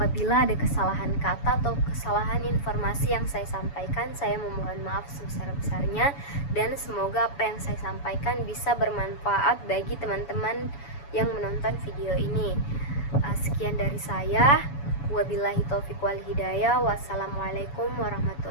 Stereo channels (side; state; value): right; late; 7.1 ms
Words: ada kesalahan kata atau kesalahan informasi yang saya sampaikan, saya memohon maaf sebesar-besarnya, dan semoga apa yang saya sampaikan bisa bermanfaat bagi teman-teman yang menonton video ini. Sekian dari saya. Wabillahi taufiq wal hidayah. Wassalamualaikum